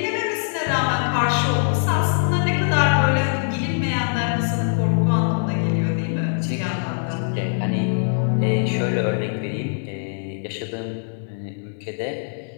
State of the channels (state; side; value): silent; right; digital silence